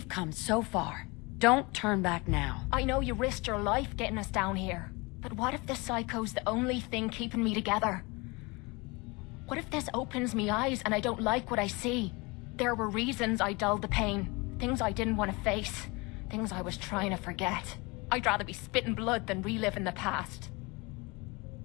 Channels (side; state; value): right; quieter; 26.2 dB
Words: come so far. Don't turn back now. I know you risked your life getting us down here. But what if the psycho's the only thing keeping me together? What if this opens me eyes and I don't like what I see? There were reasons I dulled the pain. Things I didn't want to face. Things I was trying to forget. I'd rather be spitting blood than reliving the past.